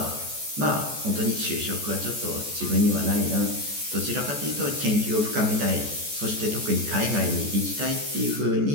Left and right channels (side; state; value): left; late; 14 ms